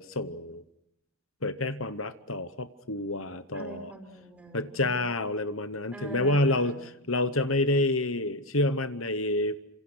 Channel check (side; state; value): both; normal; correlation 0.07